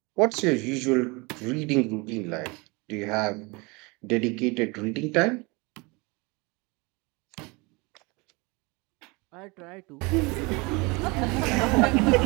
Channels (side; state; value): left; quieter; 26.8 dB